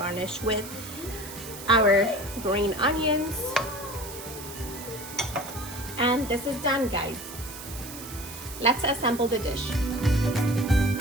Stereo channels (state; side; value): noise; right; hiss, 12 dB below the sound